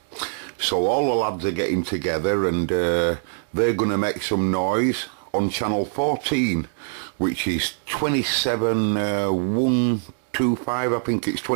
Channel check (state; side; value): silent; left; digital silence